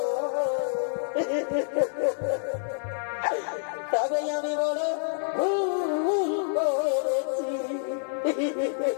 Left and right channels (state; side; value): silent; right; 60 dB below the other